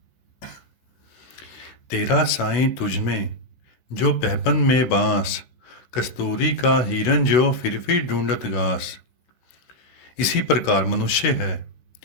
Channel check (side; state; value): right; late; 16 ms